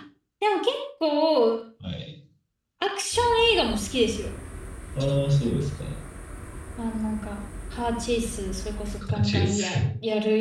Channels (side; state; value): both; identical; correlation 1.00